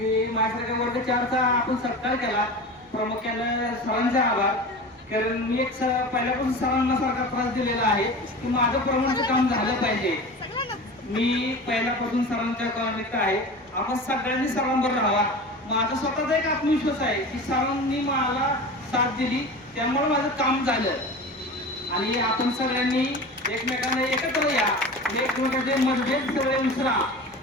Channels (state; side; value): normal; both; correlation 0.33